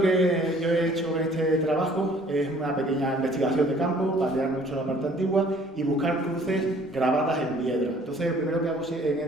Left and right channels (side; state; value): both; normal; correlation 0.56